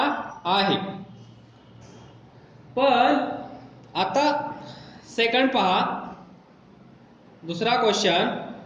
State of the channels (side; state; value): both; identical; correlation 1.00